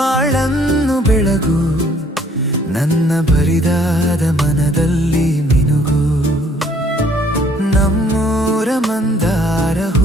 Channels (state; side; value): normal; both; correlation 0.60